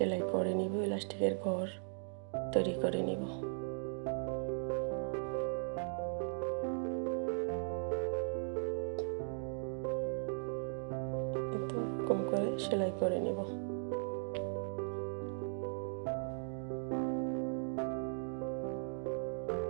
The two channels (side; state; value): left; silent; digital silence